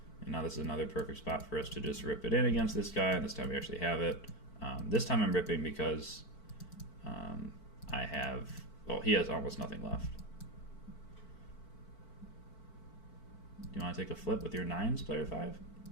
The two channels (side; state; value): right; late; 4.5 ms